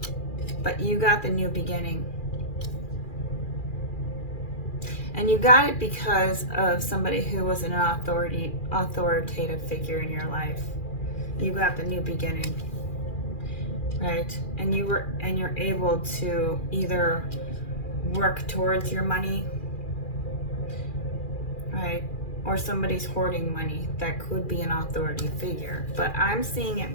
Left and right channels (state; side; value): late; right; 2.4 ms